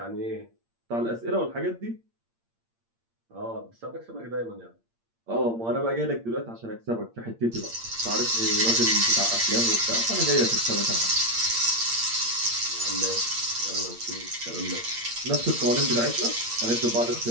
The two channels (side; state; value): left; late; 8.7 ms